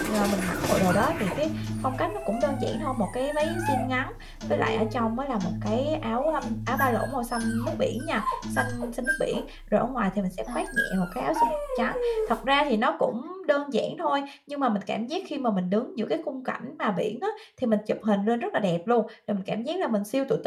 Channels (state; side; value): identical; both; correlation 1.00